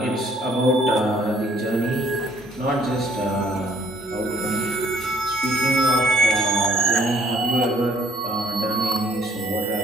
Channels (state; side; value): normal; both; correlation 0.62